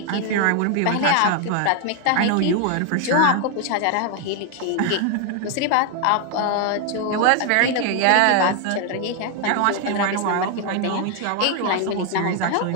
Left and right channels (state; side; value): different; both; correlation 0.01